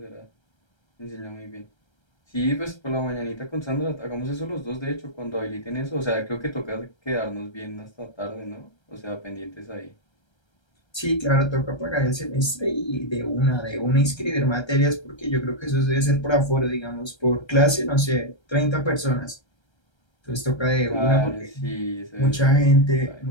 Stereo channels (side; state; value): right; late; 1.3 ms